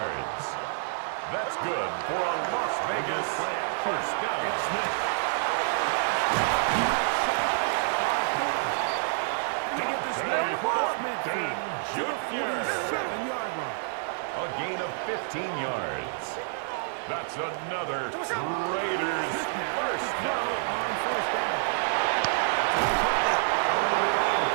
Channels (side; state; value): left; silent; 59 dB below the other